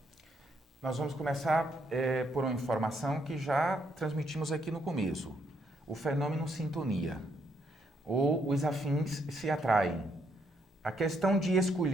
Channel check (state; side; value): normal; both; correlation 0.74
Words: Nós vamos começar por uma informação que já transmitimos aqui no começo. O fenômeno sintonia, ou os afins se atraem. A questão de